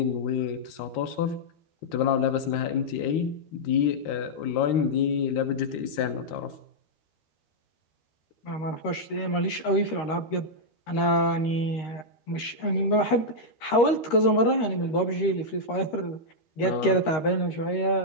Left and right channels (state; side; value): late; right; 13 ms